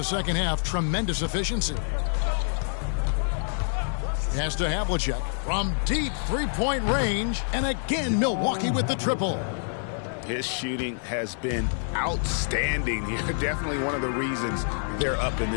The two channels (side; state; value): right; silent; 60 dB below the other